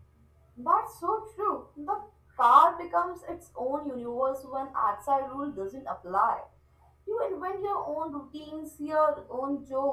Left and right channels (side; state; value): both; identical; correlation 1.00